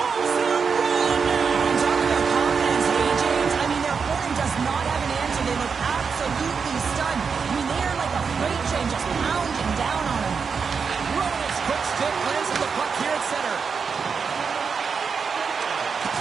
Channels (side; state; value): left; quieter; 5.7 dB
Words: in a row now. I'm talking about confidence, hey, James. I mean, their opponent does not have an answer. They look absolutely stunned. I mean, they are like a freight train just pounding down on them. Roman's quick stick lands the puck here at center.